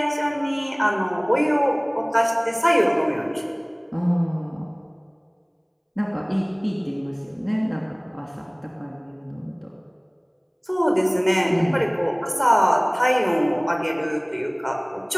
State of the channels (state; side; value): identical; both; correlation 1.00